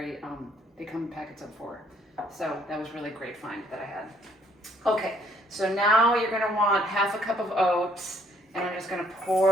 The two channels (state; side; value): normal; both; correlation 0.65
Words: they come in packets of 4. So that was really great find that I had. Okay, so now you're gonna want half a cup of oats, and I'm just gonna